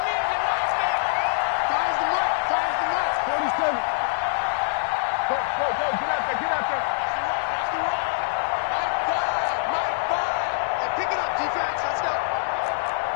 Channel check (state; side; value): silent; right; digital silence